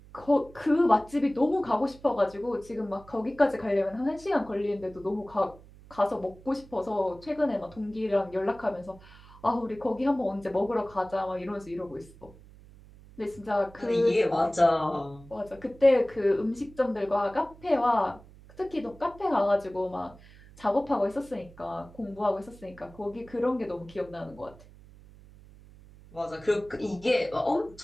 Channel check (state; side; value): noise; right; hum, 22 dB below the sound